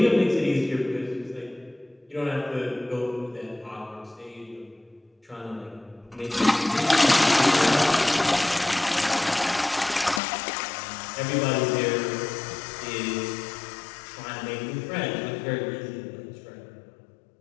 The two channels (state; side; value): drops out; right; at 10.2 s